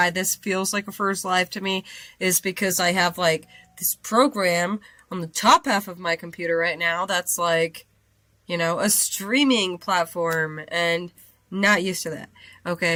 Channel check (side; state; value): both; identical; correlation 1.00